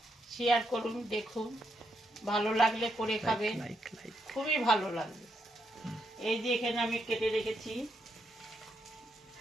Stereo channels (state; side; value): normal; both; correlation 0.79